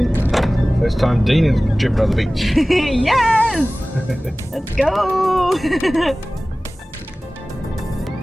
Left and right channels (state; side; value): normal; both; correlation 0.98